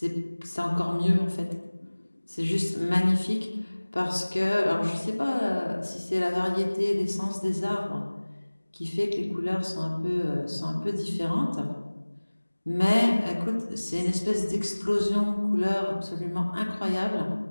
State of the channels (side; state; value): both; inverted; correlation -1.00